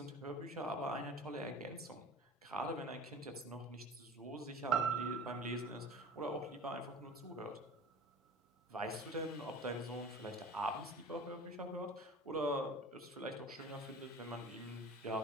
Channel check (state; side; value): normal; both; correlation 0.40